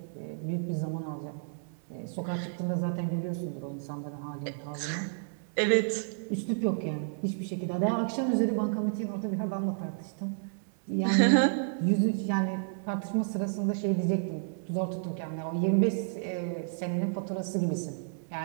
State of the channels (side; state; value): left; silent; 57 dB below the other